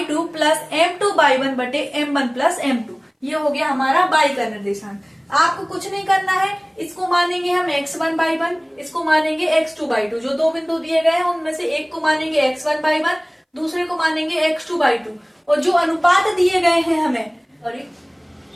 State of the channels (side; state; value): both; identical; correlation 1.00